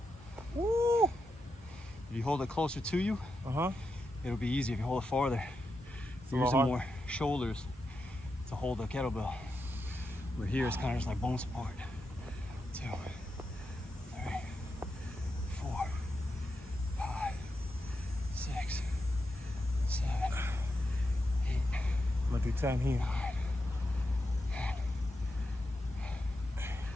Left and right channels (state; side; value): normal; both; correlation 0.86